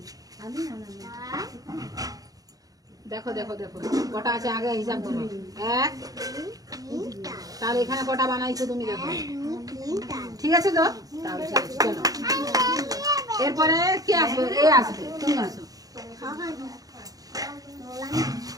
দেখো দেখো দেখো কটা আছে আগে হিসাব করো। এক, তাহলে এখানে কটা বানাইছো তুমি দেখো। ঠিক আছে তো, তাহলে ঠিক আছে, চলো। এরপরে কে আসবে? এ আসবে, তুমি আসো।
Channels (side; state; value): left; late; 0.18 ms